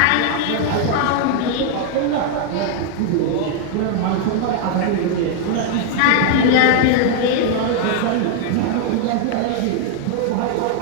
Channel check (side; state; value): both; different; correlation 0.00